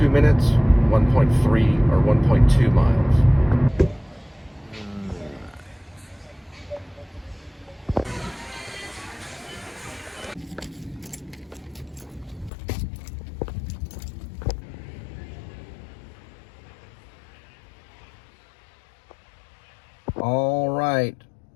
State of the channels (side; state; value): right; drops out; at 12.5 s